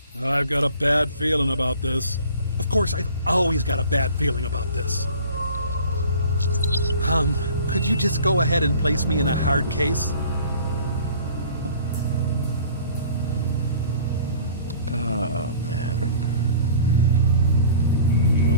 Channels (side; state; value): both; inverted; correlation -0.48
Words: I've got a bad feeling about this. Of course, I've always got a bad feeling about this. Could you just go ahead and place me in a hard case? Oh, man.